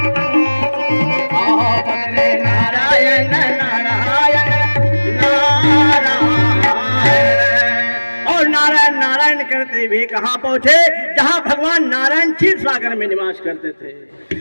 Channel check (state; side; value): inverted; both; correlation -1.00